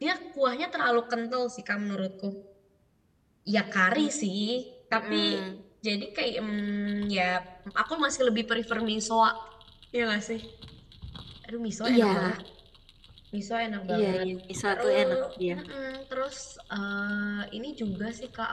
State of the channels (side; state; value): both; identical; correlation 1.00